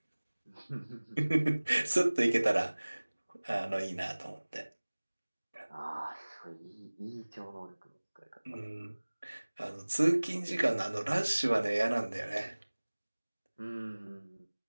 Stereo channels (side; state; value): both; inverted; correlation -1.00